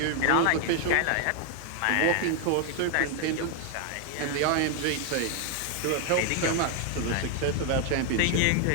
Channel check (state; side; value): different; both; correlation 0.00